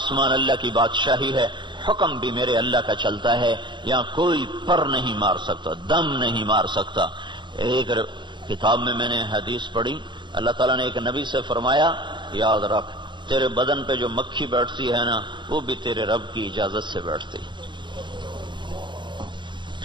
اللہ کی بادشاہی ہے، حکم بھی میرے اللہ کا چلتا ہے۔ یہاں کوئی پر نہیں مار سکتا، دم نہیں مار سکتا۔ ایک کتاب میں نے حدیث پڑھی، اللہ تعالیٰ نے ایک نبی سے فرمایا، یاد رکھ تیرے بدن پہ جو مکھی بیٹھتی ہے نا، وہ بھی تیرے رب کی اجازت سے بیٹھتی ہے۔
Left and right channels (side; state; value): left; late; 0.23 ms